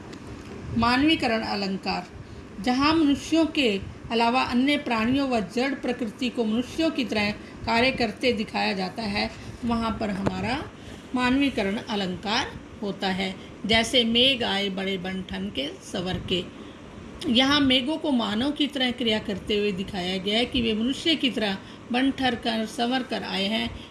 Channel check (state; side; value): identical; both; correlation 1.00